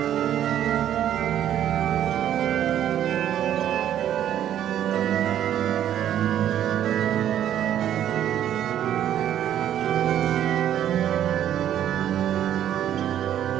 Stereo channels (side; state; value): left; quieter; 10.8 dB